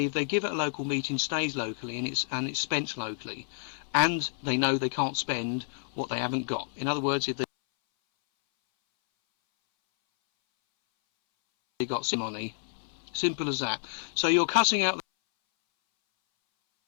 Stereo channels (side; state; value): right; silent; 58 dB below the other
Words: if they give at a local meeting, stays locally and it's spent locally, and they know they can't spend what they haven't got. In other words, if they got some money, simple as that. So you're cutting out